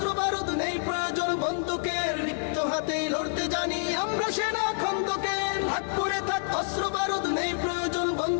বারুদ, নেই প্রয়োজন বন্দুকের। রিক্ত হাতেই লড়তে জানি আমরা সেনা খন্দকের। থাক পরে থাক অস্ত্র বারুদ, নেই প্রয়োজন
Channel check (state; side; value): silent; right; 59 dB below the other